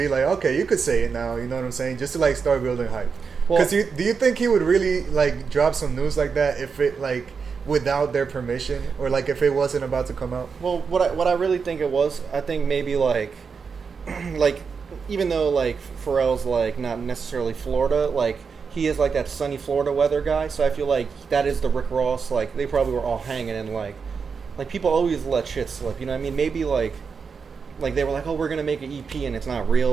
like, okay, you could say it now. You know what I'm saying? Just to like start building hype. Because do you think he would really like drop some news like that if it like? Without their permission, or like if it wasn't about to come out? Well, what I really think it was, I think maybe like even though like Pharrell's like not necessarily Florida, like he is like that sunny Florida weather guy, so I feel like that is the Rick Ross. Like they probably were all hanging and like people always let shit slip. You know what I mean? Maybe like they were like, oh, we're gonna make an EP and it's not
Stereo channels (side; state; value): left; quieter; 5.6 dB